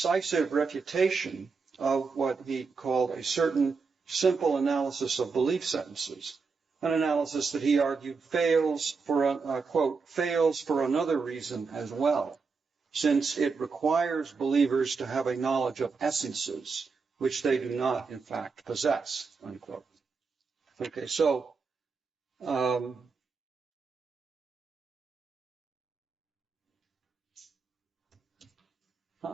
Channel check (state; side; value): quieter; left; 4.8 dB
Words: refutation of what he called a certain simple analysis of belief sentences, an analysis that he argued fails for, quote, fails for another reason as well, since it requires believers to have a knowledge of essences, which they do not, in fact, possess, unquote. Okay, so there